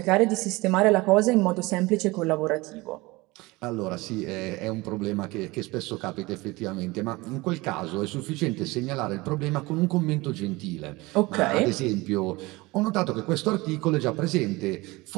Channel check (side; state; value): left; quieter; 22.2 dB